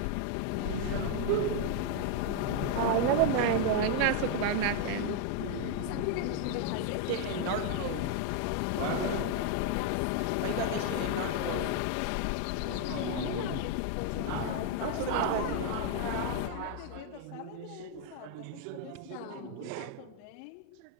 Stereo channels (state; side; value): different; both; correlation 0.00